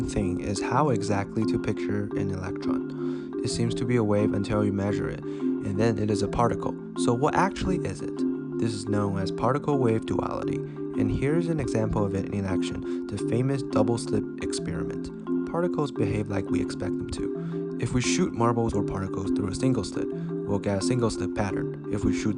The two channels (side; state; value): both; identical; correlation 1.00